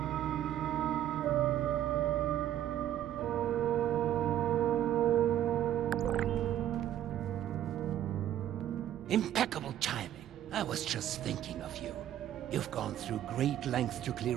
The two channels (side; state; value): left; quieter; 11.7 dB